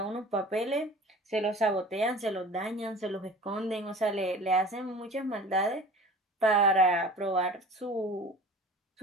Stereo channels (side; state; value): both; normal; correlation 0.42